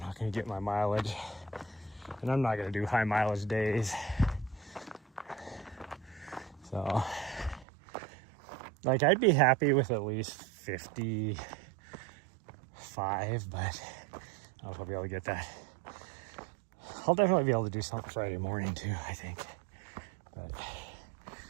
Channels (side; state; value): left; drops out; at 7.7 s